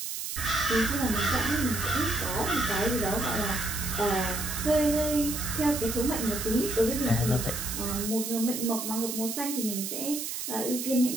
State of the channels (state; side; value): noise; right; hiss, 5 dB below the sound